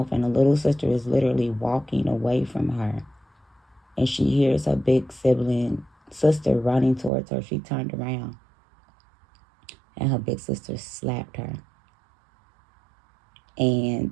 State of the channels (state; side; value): drops out; left; at 7.1 s